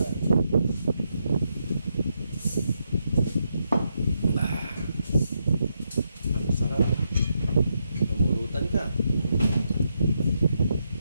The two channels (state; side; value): inverted; both; correlation -0.82